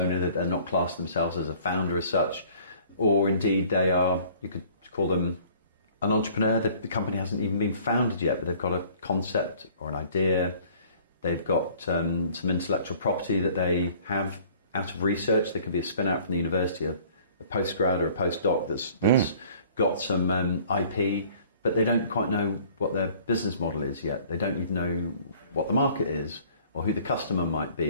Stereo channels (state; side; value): inverted; both; correlation -0.53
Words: that they're not classed themselves as a founder as such, or indeed they are, you could call them an entrepreneur. The company hasn't even been founded yet, but they've got a concept or an idea. They've got some intellectual property that they have out of research. They could be a spin out from the university, a postgrad or a postdoc that's got some IP, but they don't quite know what their business model is yet. They don't even know what the market is, or who the customer might